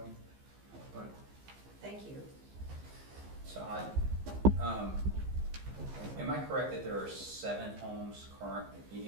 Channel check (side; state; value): left; late; 15 ms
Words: but thank you. So am I correct that there are 7 homes